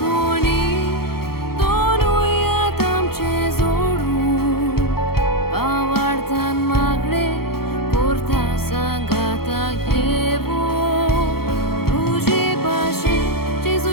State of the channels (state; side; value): late; right; 0.94 ms